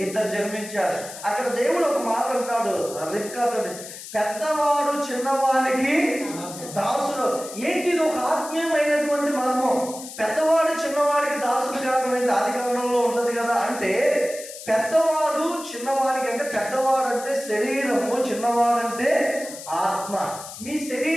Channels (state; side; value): noise; left; hiss, 13 dB below the sound